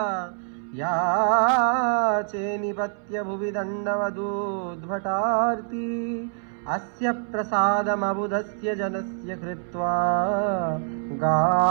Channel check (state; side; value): silent; left; 61 dB below the other